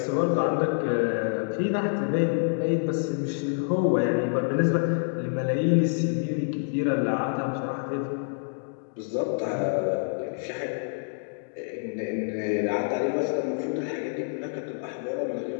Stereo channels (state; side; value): silent; right; digital silence